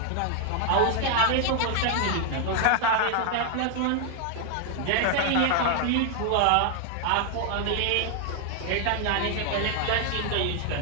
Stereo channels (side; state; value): both; different; correlation 0.00